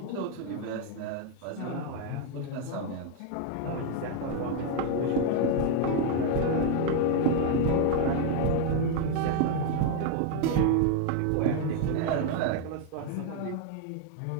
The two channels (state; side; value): different; both; correlation 0.01